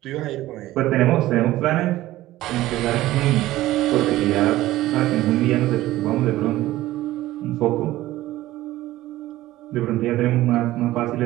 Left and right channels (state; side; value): quieter; left; 16.0 dB